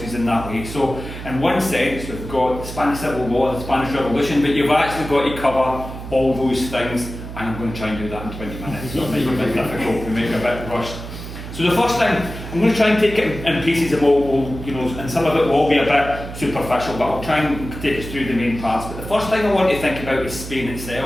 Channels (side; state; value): right; noise; hum, 10 dB below the sound